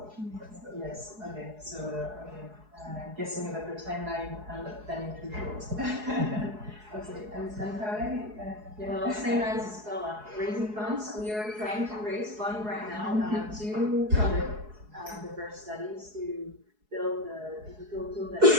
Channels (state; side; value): late; left; 4.7 ms